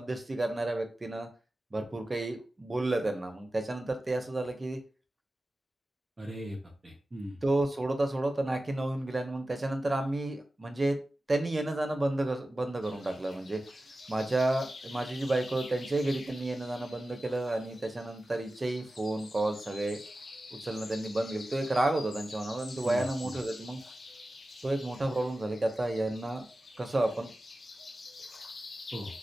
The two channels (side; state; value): both; normal; correlation 0.94